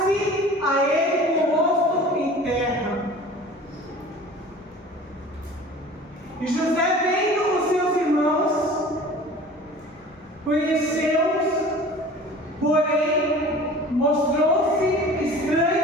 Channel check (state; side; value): normal; both; correlation 0.42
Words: a ele com o rosto em terra. E José, vendo os seus irmãos, conheceu-os, porém mostrou-se